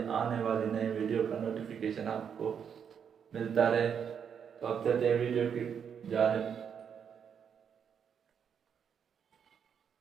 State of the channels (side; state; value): left; quieter; 7.6 dB